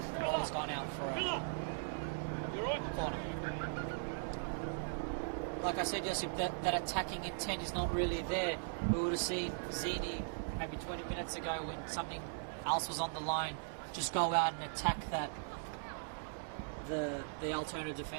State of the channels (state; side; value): silent; left; digital silence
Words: the ball has gone out for a corner. Like I said, Josip, that attacking intent is not really there. We would have seen Zini maybe 20 minutes ago when something else was on the line just go out and attack the Altona